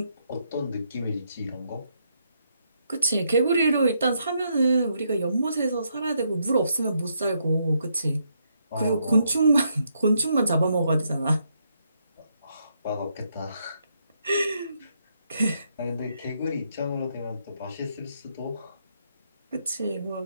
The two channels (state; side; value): inverted; both; correlation -0.76